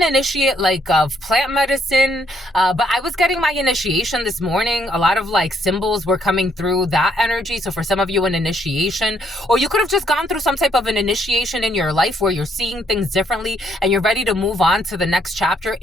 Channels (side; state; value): both; normal; correlation 0.70